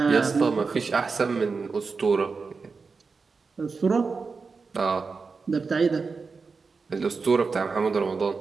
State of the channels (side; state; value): left; quieter; 4.7 dB